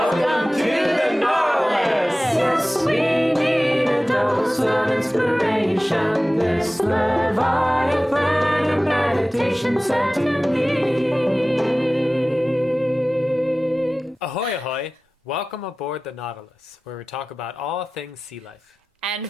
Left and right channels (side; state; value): both; normal; correlation 0.96